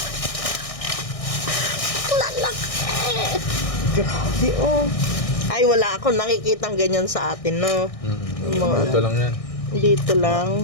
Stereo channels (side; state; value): right; late; 1.6 ms